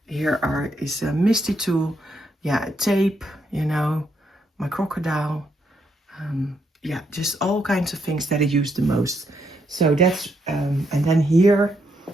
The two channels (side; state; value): both; normal; correlation 0.77